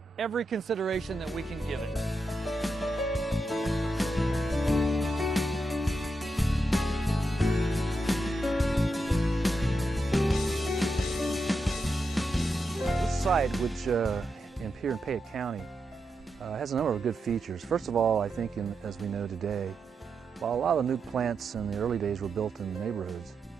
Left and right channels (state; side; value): normal; both; correlation 0.86